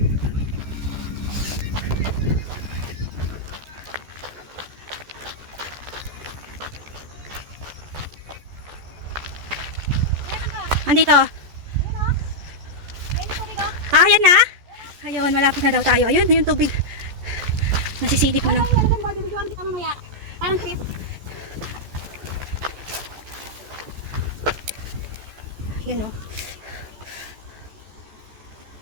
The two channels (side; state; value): left; late; 14 ms